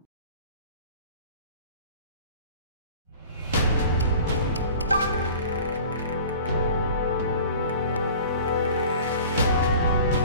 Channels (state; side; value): inverted; both; correlation -0.43